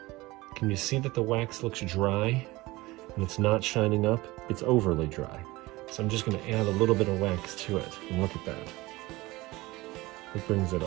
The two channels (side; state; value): left; quieter; 20.5 dB